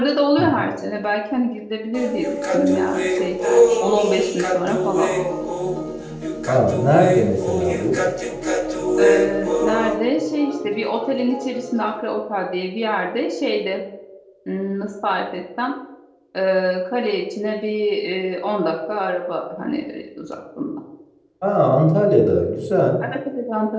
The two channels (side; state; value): both; identical; correlation 1.00